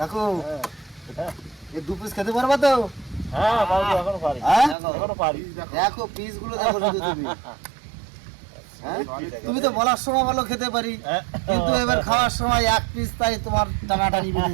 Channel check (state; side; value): drops out; left; at 4.8 s